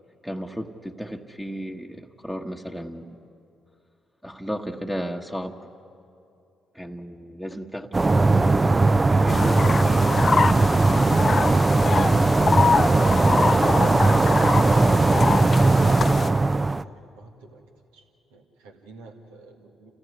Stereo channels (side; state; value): both; normal; correlation 0.94